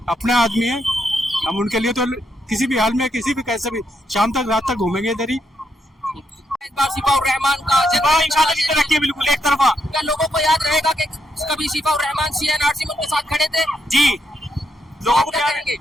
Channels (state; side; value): normal; both; correlation 0.79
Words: अपने आदमी है हम, उनके लिए तो किसी भी हाल में, किसी भी कैसे भी, शाम तक रात तक घूमेंगे इधर ही। इस बार शिफाउर रहमान का इंशाअल्लाह जीते रखिए, बिल्कुल एक तरफा। क्या लोगों को याद रहेगा कि कभी शिफाउर रहमान CNRC में उनके साथ खड़े थे? जी, लोगों को क्या क्या कहेंगे?